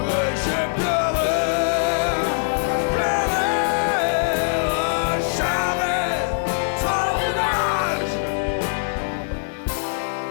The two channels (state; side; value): silent; right; digital silence